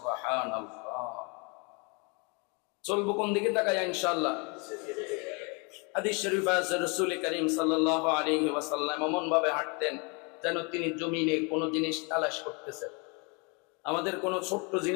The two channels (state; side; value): quieter; right; 31.9 dB